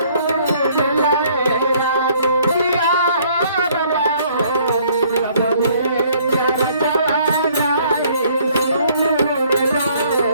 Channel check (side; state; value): both; inverted; correlation -0.61